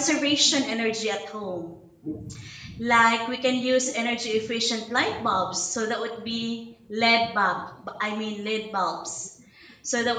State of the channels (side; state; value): both; identical; correlation 1.00